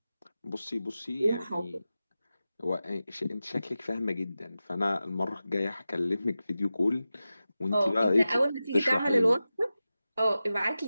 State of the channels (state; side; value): inverted; both; correlation -0.94